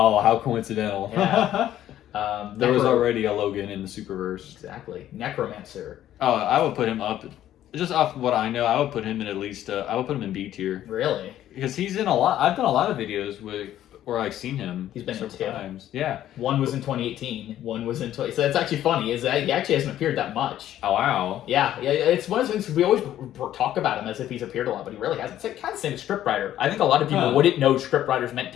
how coincidental. Yeah. There was already a Logan in the Superverse. Exactly. Necromancer. Oh, I would put him up. Just off what I know, I would put him in at least, I would put him in B tier. Really? Because he's in a lot, I've done a lot of videos where I've seen him. He's been in 2 times. Yeah. One was in 2018, one was in so that's actually funny, is that he actually hasn't appeared that much. Oh, wow. Yeah, it's one of those things we always talk about him as if he's appeared a lot, but he really hasn't. It's kind of the same as scriptwriter. I think a lot of people wouldn't know scriptwriter's meant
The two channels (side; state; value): right; quieter; 12.2 dB